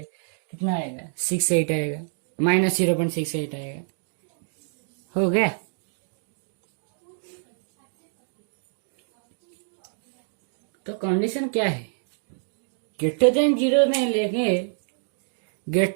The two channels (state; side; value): silent; left; digital silence